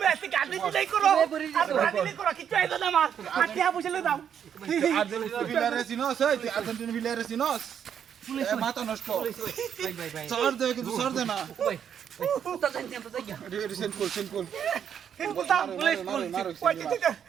আজকে গাড়ি নাই করো আর ব্রাজিল করো কিছু আইতো না মার আটিয়া বুঝলে দাও আর্জেন্টিনা ভিলারে সিনোস এই তুই আর্জেন্টিনা ভিলারে সিনোস মাথা নষ্ট সর দে কিন্তু সর দে না রিসেন্ট কল বুঝতাম পুলিশ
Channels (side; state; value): left; quieter; 8.5 dB